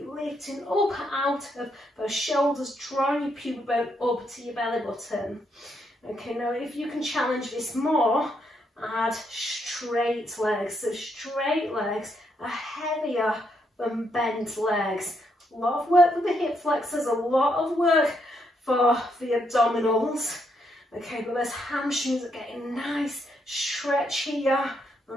lifting up out of those shoulders, drawing your pubic bone up to your belly button. Okay, now if you can challenge this more, add straight legs. So straight legs are heavier than bent legs. A lot of work with the hip flexors, a lot of work for the abdominals. Okay, but those hamstrings are getting nice stretch here,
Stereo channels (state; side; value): normal; both; correlation 0.77